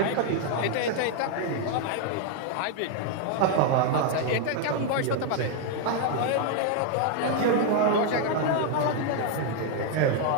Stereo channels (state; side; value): different; both; correlation 0.00